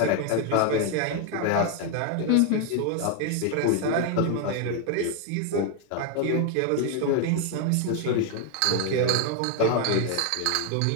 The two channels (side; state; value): both; different; correlation 0.01